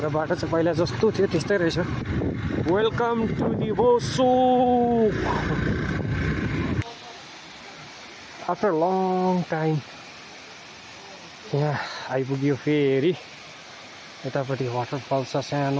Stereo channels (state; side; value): identical; both; correlation 1.00